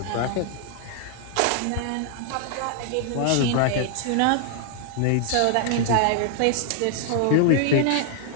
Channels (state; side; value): different; both; correlation 0.00